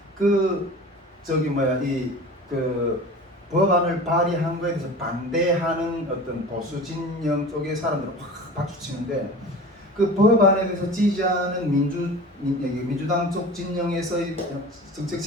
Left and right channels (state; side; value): normal; both; correlation 0.37